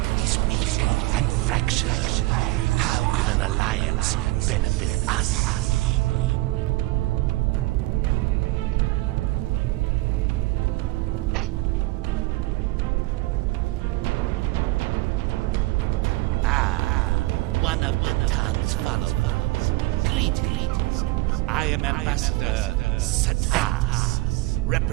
is weak and fractured. How could an alliance benefit us? One of the Tan's followers. Greetings. I am Ambassador Satas,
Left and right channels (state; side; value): quieter; left; 19.6 dB